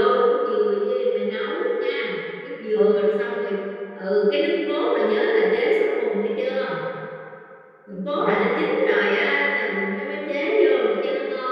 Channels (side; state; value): both; identical; correlation 1.00